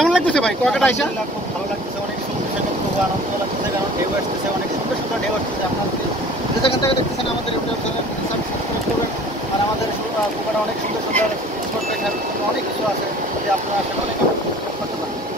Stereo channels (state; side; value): normal; both; correlation 0.47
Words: লাগতেছে ভাই কুয়াকাটা এসে? খুব ভালো লাগতেছে, অনেক সুন্দর, খুব আনন্দ লাগতেছে, কারণ ঢেউ আসতেছে, অনেক সুন্দর সুন্দর ঢেউ আসতেছে। আপনারা যে যেখান থেকে দেখতেছেন আমাদের ইউটিউব চ্যানেল সাবস্ক্রাইব করবেন। আর আমাদের কুয়াকাটা অনেক সুন্দর সুন্দর স্পট দেখার জন্য অনেক কিছু আছে, যে আপনারা আসলে অনেক করতে পারেন।